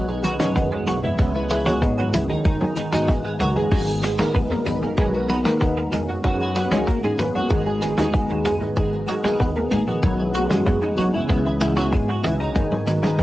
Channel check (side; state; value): both; normal; correlation 0.94